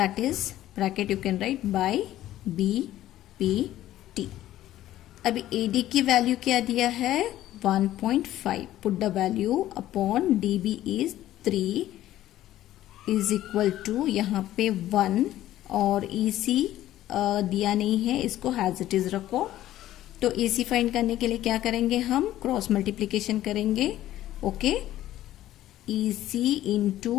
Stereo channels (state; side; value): quieter; right; 13.7 dB